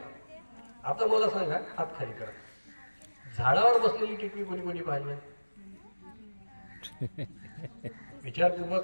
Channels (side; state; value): both; inverted; correlation -1.00